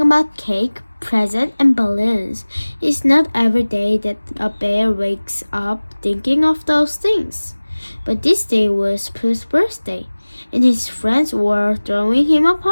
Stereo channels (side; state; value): both; inverted; correlation -1.00